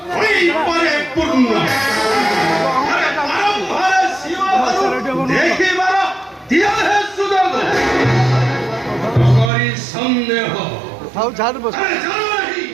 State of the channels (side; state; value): left; drops out; at 9.5 s